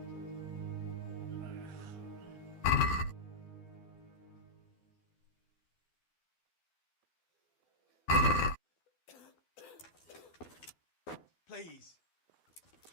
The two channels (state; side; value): late; right; 12 ms